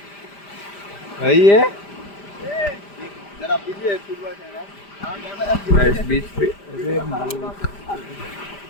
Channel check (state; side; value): late; right; 5.0 ms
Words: भाई है जरा पीछे फुटबॉल खेलना गाइस।